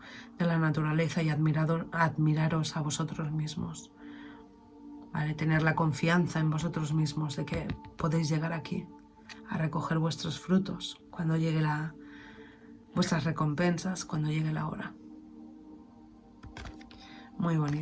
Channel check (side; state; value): both; identical; correlation 1.00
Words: de la naturaleza, y admiraros a vosotros mismos. ¿Vale? Tener la confianza en vosotros mismos de que podéis llegar aquí a recoger vuestros frutos cuando llegue vuestras recompensas, cuando llegue la hora. Muy